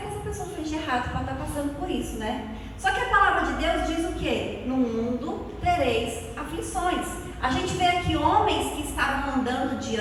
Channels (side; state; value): both; identical; correlation 1.00